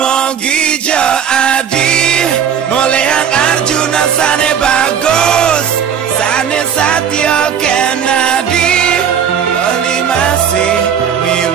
jo adi mulai ang Arjuna sane bagus sane Satya Kennedy bali masih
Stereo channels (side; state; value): left; quieter; 8.0 dB